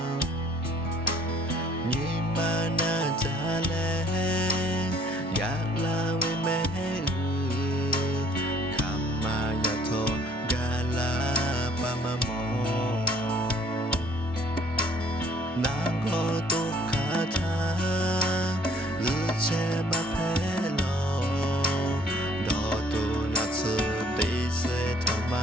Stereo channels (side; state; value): both; normal; correlation 0.59